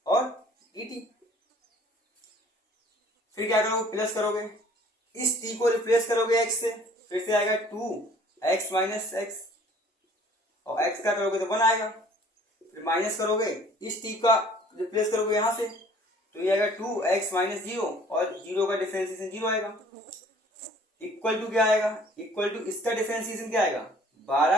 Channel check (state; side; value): normal; both; correlation 0.54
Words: और dt। फिर क्या करोगे प्लस करोगे, इस t को रिप्लेस करोगे x से, फिर से आएगा 2x माइनस x, और x का करोगे तो 1 आएगा। फिर माइनस करोगे, इस t का रिप्लेस करोगे यहाँ से, तो ये आएगा 2x माइनस 0 और 0 का डिफरेंशिएशन 0 आएगा। इक्वल टू क्या आएगा, इक्वल टू इसका डिफरेंशिएशन क्या आएगा